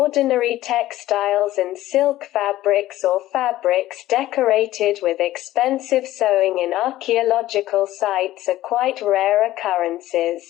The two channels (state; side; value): quieter; right; 15.1 dB